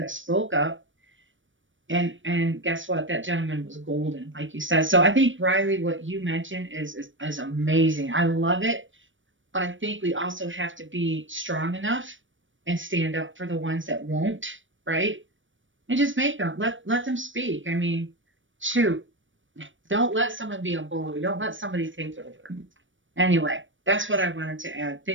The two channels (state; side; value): late; left; 0.56 ms